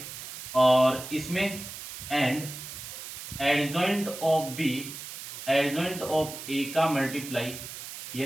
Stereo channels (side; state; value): right; noise; hiss, 10 dB below the sound